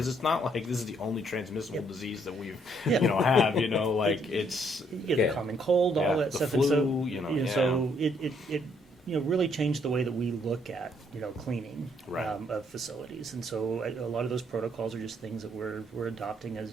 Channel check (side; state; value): both; normal; correlation 0.69